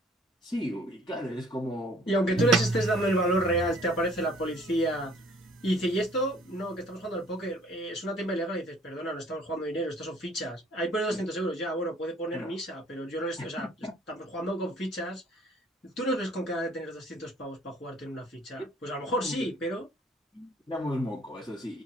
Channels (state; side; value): normal; both; correlation 0.57